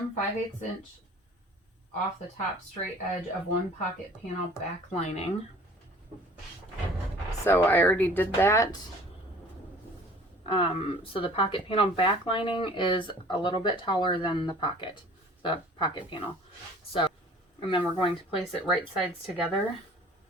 5/8 inch off the top straight edge of one pocket panel back lining. So I already did that. So the pocket panel back lining is a little bit taller than the pocket panel. So, and then we're going to place it right sides together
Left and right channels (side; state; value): both; normal; correlation 0.49